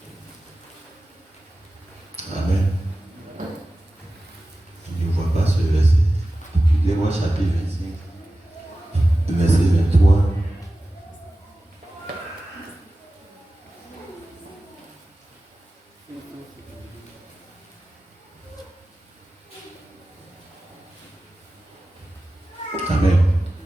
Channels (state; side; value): normal; both; correlation 0.95